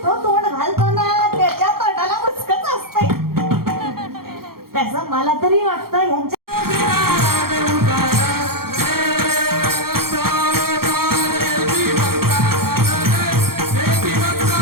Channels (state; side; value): late; left; 0.94 ms